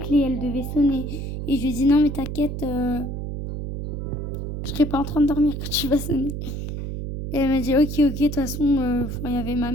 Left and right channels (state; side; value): noise; right; hum, 5 dB below the sound